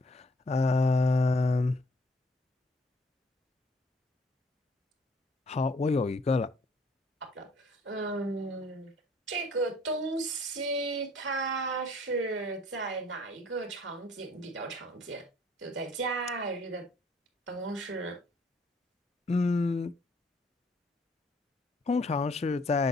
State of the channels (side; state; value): both; normal; correlation 0.60